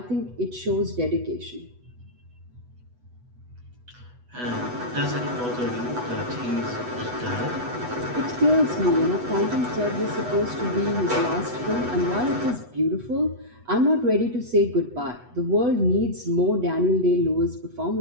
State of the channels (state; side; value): late; left; 8.1 ms